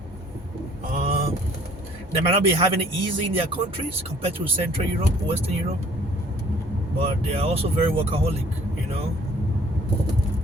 they might not be having it easy in their countries compared to Central Europe, Western Europe, but they are also very workaholic. You know,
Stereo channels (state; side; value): normal; both; correlation 0.56